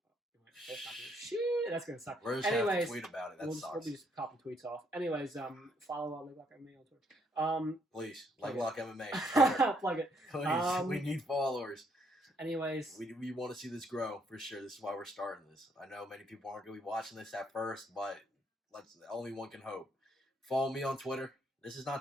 Shit, that's gonna suck. We're just gonna have to tweet about it. That we'll sucks. be just copying tweets off. Anyways, follow Leg Lock MMA on Twitter. Please, Leg Lock MMA. Plug it. Please, we need followers. Anyways, we want to see this grow for sure. This is why we're starting this. I know many people aren't going to be watching this at first, but only one can hope. Follow me on Twitter. This is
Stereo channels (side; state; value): both; normal; correlation 0.70